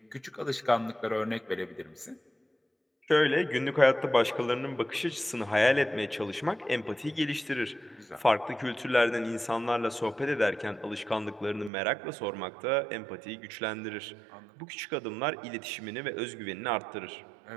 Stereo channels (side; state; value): left; drops out; at 11.7 s